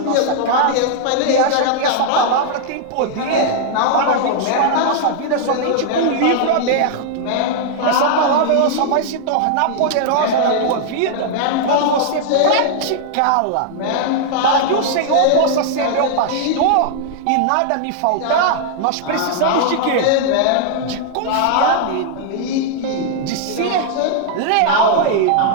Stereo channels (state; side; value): different; both; correlation -0.01